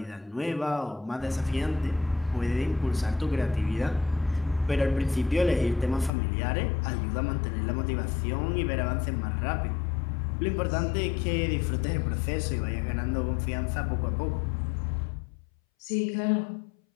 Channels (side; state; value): right; drops out; at 6.1 s